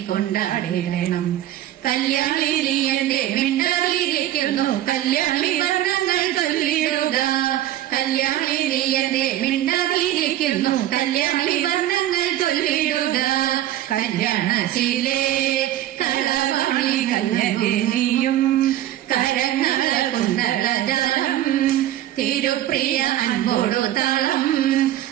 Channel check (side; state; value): left; quieter; 13.2 dB